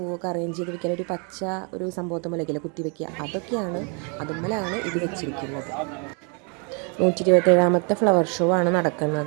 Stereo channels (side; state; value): left; quieter; 35.8 dB